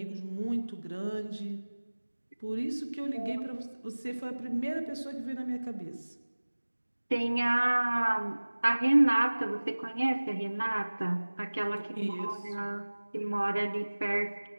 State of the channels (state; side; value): inverted; both; correlation -1.00